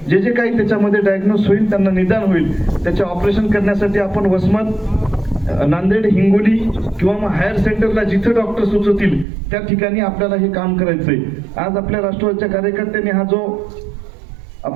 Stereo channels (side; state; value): left; drops out; at 9.2 s